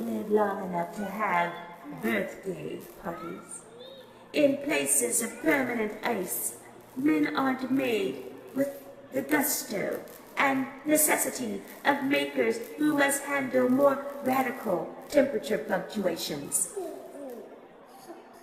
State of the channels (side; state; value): both; identical; correlation 1.00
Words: long enough to have birthday parties. In places of permanent ice, men aren't made with the gusto and necessity of makers who must handle more radical temperature fluctuations.